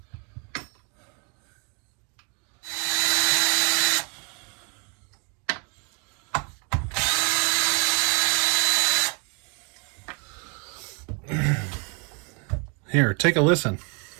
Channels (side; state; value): left; quieter; 35.2 dB